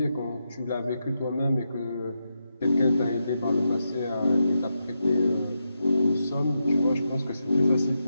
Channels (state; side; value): inverted; both; correlation -0.86